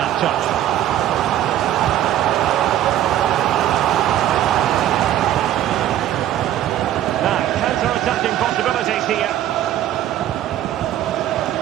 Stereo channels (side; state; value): left; quieter; 12.2 dB